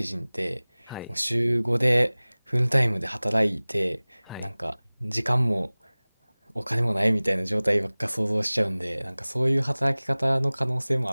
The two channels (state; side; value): inverted; both; correlation -1.00